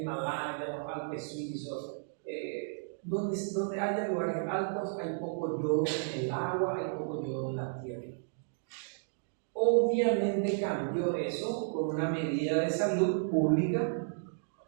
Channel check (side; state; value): left; silent; digital silence